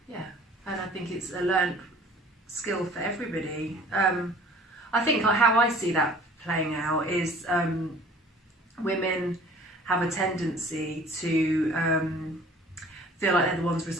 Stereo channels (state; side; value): normal; both; correlation 0.50